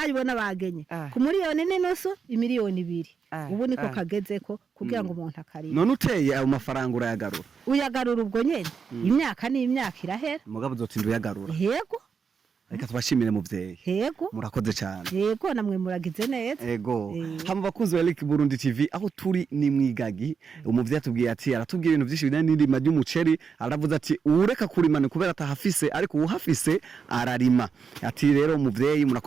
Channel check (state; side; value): quieter; left; 6.0 dB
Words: bagenye ku miliyoni n'inusu, imiliyoni 2. Ubu niko kagezeko kugira ngo umuntu akarima. None uteye ayo mafaranga urayagarura? Uyagarura ubwo nyene imyaka n'imyaka irahera. Mugabo uzotinda uyagarura? Yego. Reka tubashimire muvyeyi. Yego. Murakoze cyane. Yego namwe muragize neza. Yego. Hama bakunzi wa Eric Burundi TV aho turi ni mwigagi. Umuvyeyi atubwiye ati aratubwiye ibintu byinshi bijanye n'indima ry'umuceri, aravuze ati ureka kurimana kubera atahafise ariko uhafise ararima. Ati rero umuvyeyi